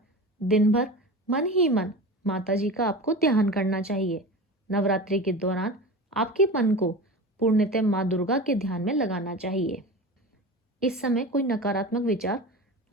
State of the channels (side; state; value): both; normal; correlation 0.30